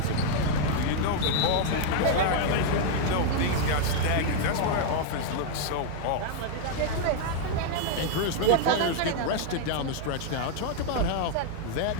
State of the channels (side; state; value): both; different; correlation 0.00